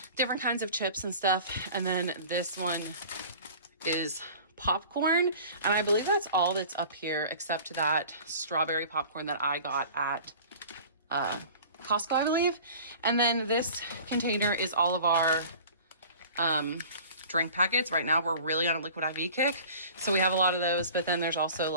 different kinds of chips and stuff. And then this one is popcorn, and I believe that's all that's up here except that strawberry popcorn that I got at Costco, I believe. And then this container is all of our drink packets. Right now we're really on a liquid IV kick, so we have a lot of those, but then there's also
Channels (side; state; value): both; inverted; correlation -0.43